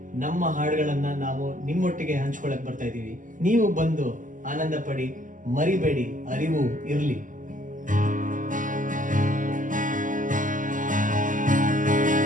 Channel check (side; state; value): left; late; 0.38 ms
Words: ನಮ್ಮ ಹಾಡುಗಳನ್ನ ನಾವು ನಿಮ್ಮೊಟ್ಟಿಗೆ ಹಂಚ್ಕೊಳಕ್ ಬರ್ತಾ ಇದ್ದೀವಿ. ನೀವು ಬಂದು ಆನಂದ ಪಡಿ, ಮರಿಬೇಡಿ, ಅರಿವು ಇರ್ಲಿ.